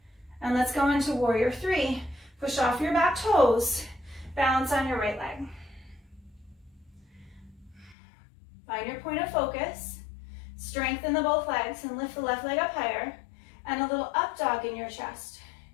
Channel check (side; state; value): right; drops out; at 8.0 s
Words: And let's go into warrior 3. Push off your back toes. Balance on your right leg. Find your point of focus. Strengthen the both legs and lift the left leg up higher. And a little up dog in your chest.